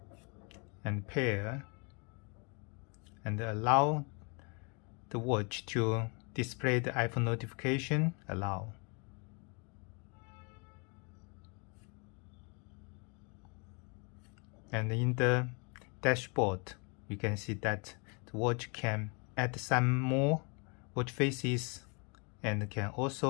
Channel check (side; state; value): right; quieter; 34.0 dB